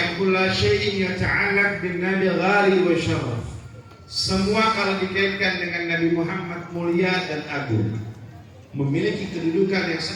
kula syai'in yata'allaq bin nabi ghali wa syaraf. Semua kalau dikaitkan dengan Nabi Muhammad mulia dan agung, memiliki kedudukan yang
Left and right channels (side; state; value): both; identical; correlation 1.00